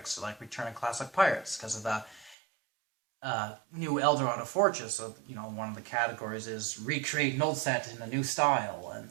so like Return of Classic Pirates, because of the new Eldorado Fortress. So, one of the categories is recreate an old set in a new style. And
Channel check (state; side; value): drops out; left; at 2.4 s